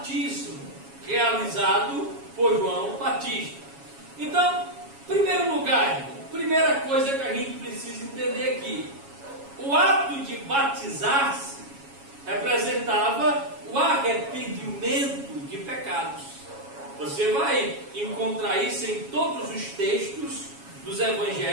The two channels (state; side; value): late; left; 7.2 ms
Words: realizado por João Batista. Então, em primeiro lugar, primeira coisa que a gente precisa entender aqui: o ato de batizar-se representava o ato arrependimento de pecados. Você vai encontrar isso em todos os textos dos